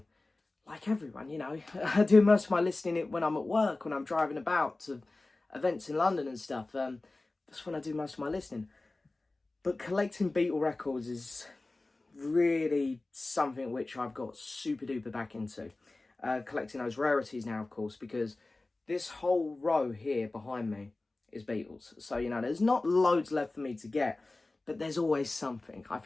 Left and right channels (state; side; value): quieter; right; 3.1 dB